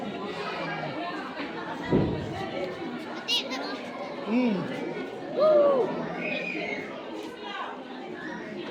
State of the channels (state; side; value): identical; both; correlation 1.00